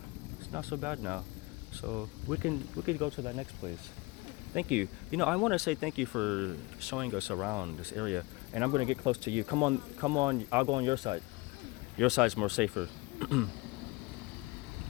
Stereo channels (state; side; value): quieter; right; 24.1 dB